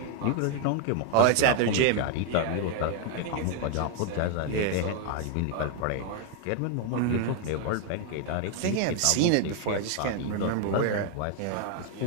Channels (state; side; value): different; both; correlation 0.01